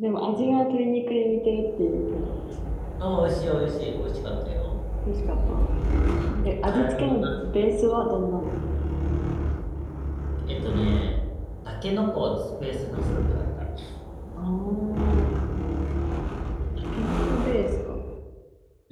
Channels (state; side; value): identical; both; correlation 1.00